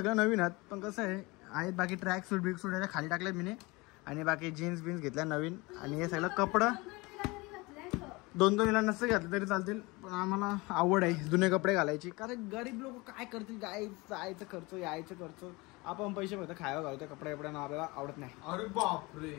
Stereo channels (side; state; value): right; quieter; 24.2 dB